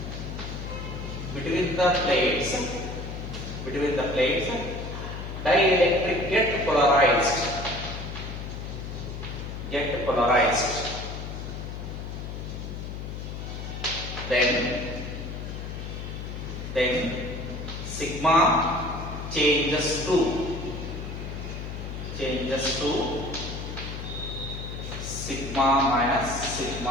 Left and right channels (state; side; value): noise; left; hum, 7 dB below the sound